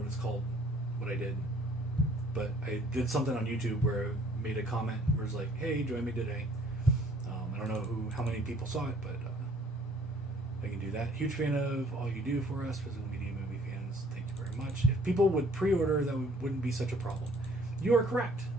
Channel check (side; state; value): both; normal; correlation 0.59